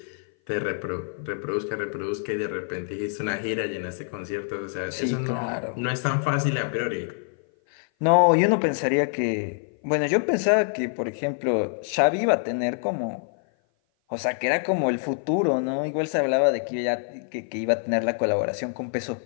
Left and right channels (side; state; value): right; silent; 56 dB below the other